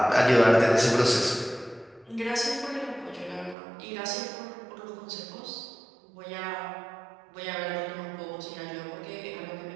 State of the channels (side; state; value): left; drops out; at 3.6 s